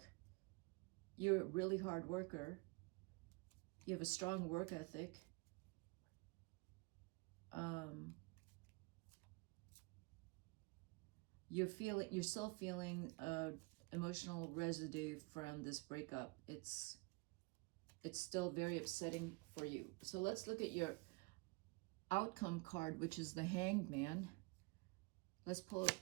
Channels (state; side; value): quieter; left; 27.6 dB